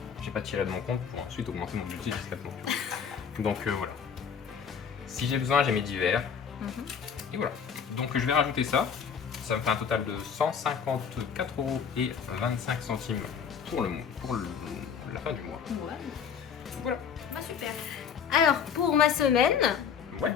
J'ai pas tiré de mon compte pour ensuite augmenter mon budget discrètement. Donc voilà. Si j'ai besoin, j'ai mes divers. Et voilà. Donc je vais rajouter ça. Ça me fait un total de 154,25 € pour la fin du mois. Ouais. Voilà. Bah super. Alors pour ma semaine, Ouais.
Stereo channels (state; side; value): quieter; right; 7.1 dB